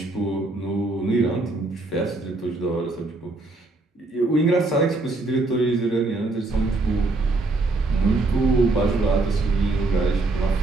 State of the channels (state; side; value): quieter; left; 3.2 dB